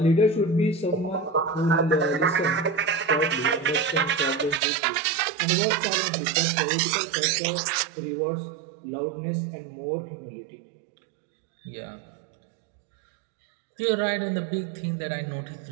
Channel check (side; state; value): left; drops out; at 4.6 s